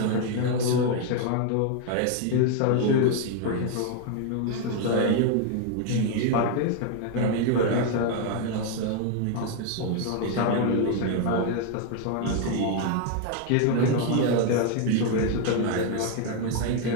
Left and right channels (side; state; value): both; different; correlation 0.01